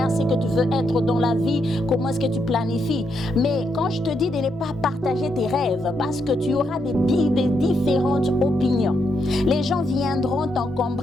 ce que tu veux être dans la vie, comment est-ce que tu planifies. Mais quand je te dis de ne pas partager tes rêves, parce que tu auras des différentes opinions. Les gens viendront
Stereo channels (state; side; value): normal; both; correlation 0.80